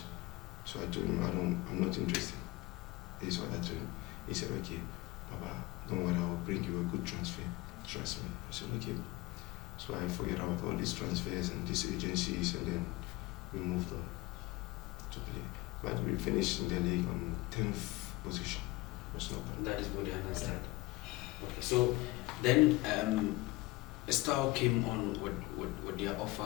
So I told him, I'm not interested. This is what I told him. He said, okay, Baba, don't worry, I will bring you a good transfer. Trust me. I said, okay. So I figured out all these transfers and these agencies, and then we moved on to play. But we finished in the league on 10th position. Was not bad. That is what I understand. Okay, so then Steaua came on with their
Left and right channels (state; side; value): quieter; right; 20.6 dB